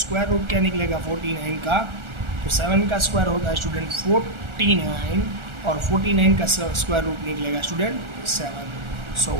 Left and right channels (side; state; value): left; late; 1.4 ms